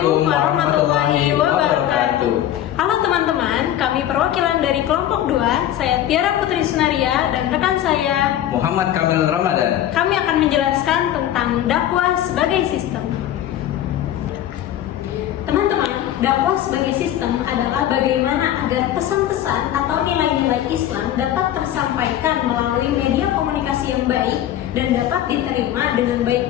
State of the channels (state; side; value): quieter; right; 11.9 dB